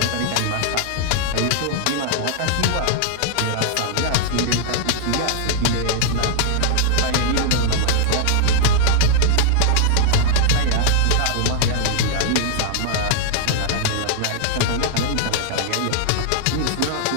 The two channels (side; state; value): both; different; correlation -0.01